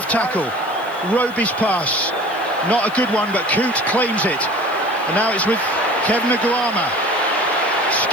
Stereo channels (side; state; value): left; noise; hiss, 23 dB below the sound